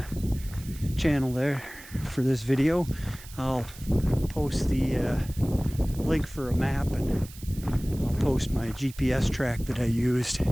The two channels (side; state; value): right; noise; hiss, 18 dB below the sound